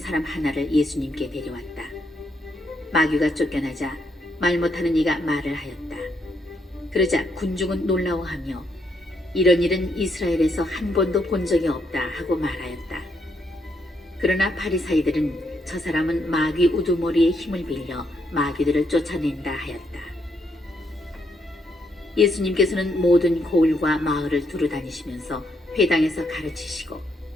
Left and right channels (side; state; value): both; normal; correlation 0.75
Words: 하나를 예수님께 데려왔다. 마귀가 쫓겨나자 말 못하는 이가 말을 하였다. 그러자 군중은 놀라워하며 이런 일은 이스라엘에서 한 번도 본 적이 없다 하고 말하였다. 그러나 바리사이들은 저 사람은 마귀 우두머리의 힘을 빌려 마귀들을 쫓아낸다 하였다. 예수님께서는 모든 고을과 마을을 두루 다니시면서 회당에서 가르치시고